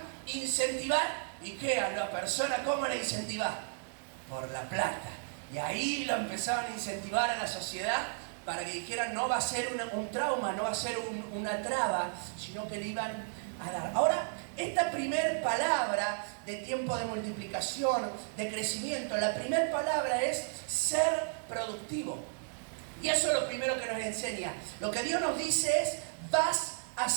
incentivar. ¿Y qué? A la persona, ¿cómo la incentivar? Por la plata. Y ahí lo empezaban a incentivar a la sociedad para que dijeran, no va a ser un trauma, no va a ser una traba, sino que le iban a dar. Ahora, esta primer palabra de tiempo de multiplicación, de crecimiento, la primera palabra es ser productivo. Y eso es lo primero que nos enseña. Lo que Dios nos dice es, vas a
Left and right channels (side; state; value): left; silent; digital silence